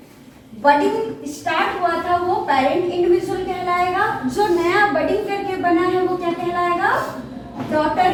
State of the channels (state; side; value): identical; both; correlation 1.00